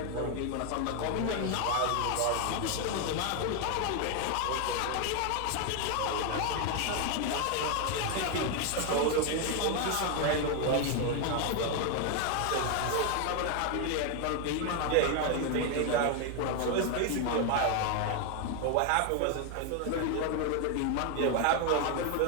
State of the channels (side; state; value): both; different; correlation 0.01